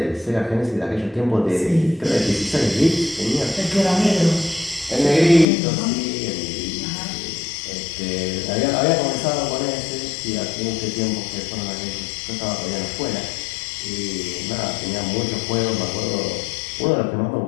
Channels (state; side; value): drops out; right; at 5.5 s